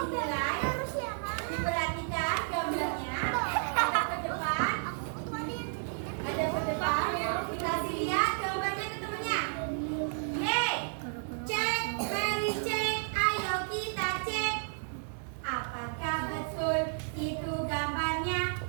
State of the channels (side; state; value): left; silent; 56 dB below the other